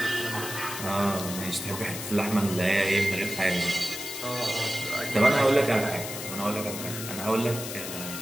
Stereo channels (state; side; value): noise; left; hiss, 7 dB below the sound